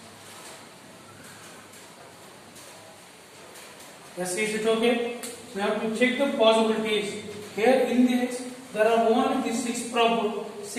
Yes, is it okay? We have to check the possibilities. Here in this, there are only these 6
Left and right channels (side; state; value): both; identical; correlation 1.00